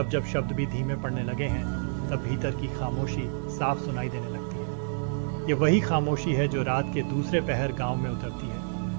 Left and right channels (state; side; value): silent; left; digital silence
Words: जब शब्द भी धीमे पड़ने लगे हैं तब भीतर की खामोशी साफ सुनाई देने लगती है। ये वही खामोशी है जो रात के दूसरे पहर गांव में उतरती